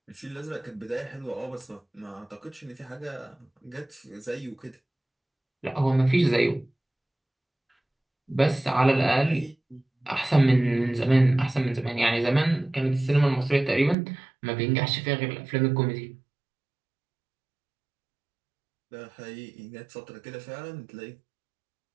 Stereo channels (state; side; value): drops out; left; at 14.0 s